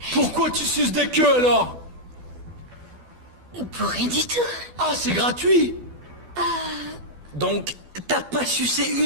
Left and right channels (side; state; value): left; late; 12 ms